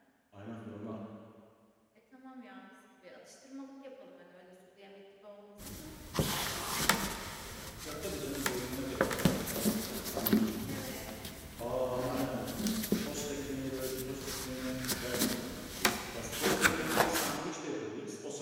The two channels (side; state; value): both; identical; correlation 1.00